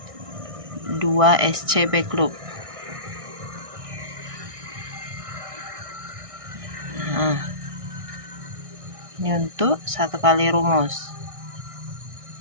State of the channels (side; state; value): left; late; 1.6 ms